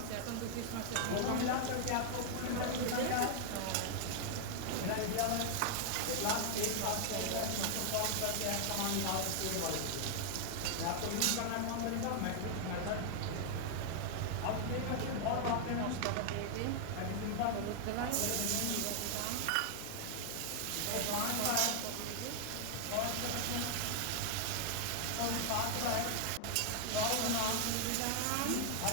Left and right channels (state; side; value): different; both; correlation 0.00